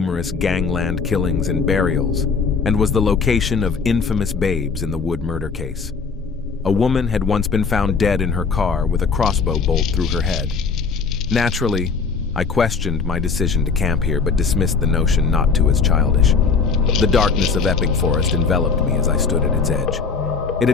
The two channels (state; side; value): quieter; right; 5.1 dB